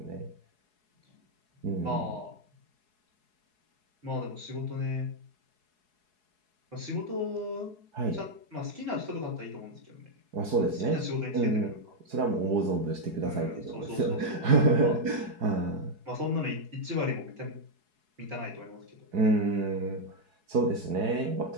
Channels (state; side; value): late; left; 4.7 ms